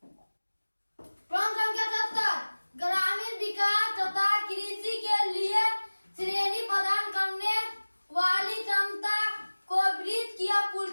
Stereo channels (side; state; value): both; inverted; correlation -1.00